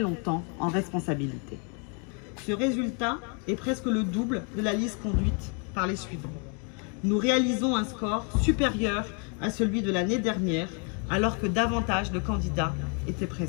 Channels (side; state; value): right; quieter; 37.6 dB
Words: longtemps en responsabilité. Ce résultat est presque le double de la liste conduite par les suivants. Nous réalisons un score supérieur à celui de l'année dernière, alors que davantage de candidats étaient